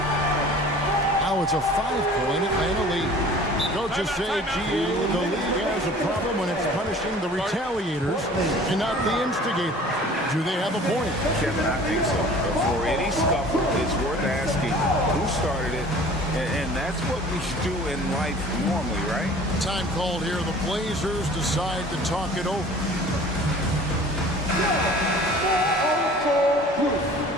Now it's a 5-point Atlanta lead. Coaches say, GA, the league has a problem when it's punishing the retaliators and not the instigators. Do they have a point? Kevin, I think so. For any scuffle, it's worth asking who started it, and that's what we do in life normally, right? Time called here. The Blazers decide to talk it over.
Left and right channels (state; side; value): normal; both; correlation 0.47